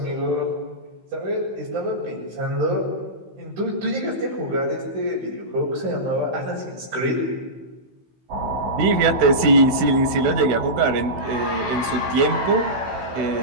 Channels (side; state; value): left; late; 16 ms